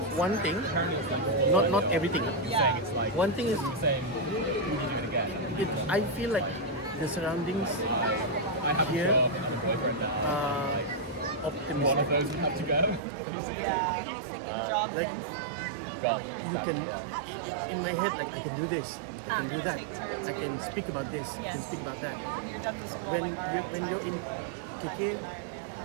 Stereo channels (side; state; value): left; drops out; at 13.0 s